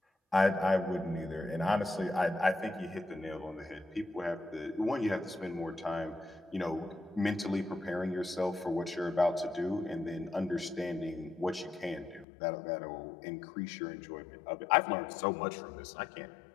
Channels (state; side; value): drops out; right; at 12.2 s